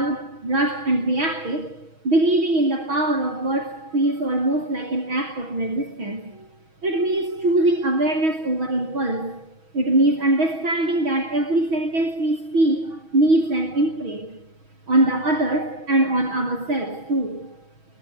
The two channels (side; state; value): left; late; 6.2 ms